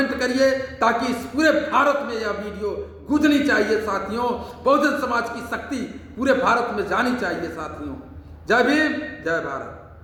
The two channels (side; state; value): both; identical; correlation 1.00